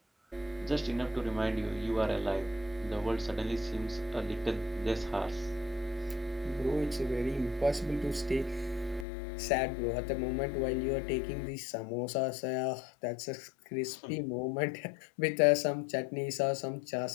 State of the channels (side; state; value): right; drops out; at 9.1 s